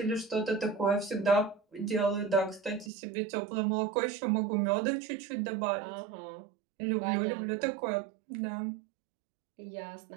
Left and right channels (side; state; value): left; drops out; at 2.9 s